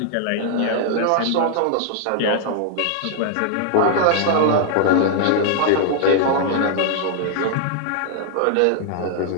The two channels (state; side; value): different; both; correlation 0.00